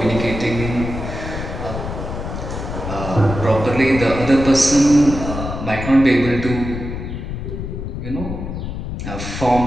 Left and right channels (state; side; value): noise; left; rumble, 6 dB below the sound